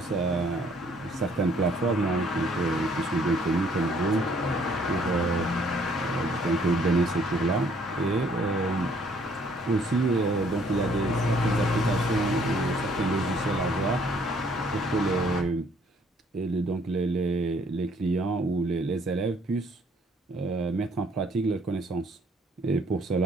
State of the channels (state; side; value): normal; both; correlation 0.63